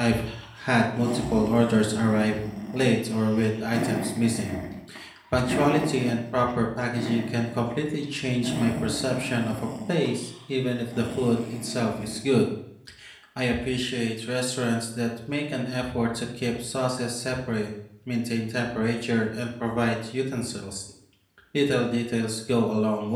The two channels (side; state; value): both; identical; correlation 1.00